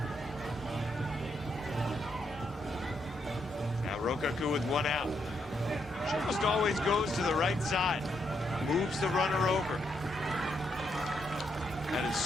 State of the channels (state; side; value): normal; both; correlation 0.78